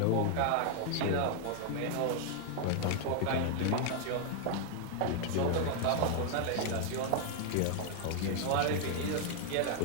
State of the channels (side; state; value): both; different; correlation 0.00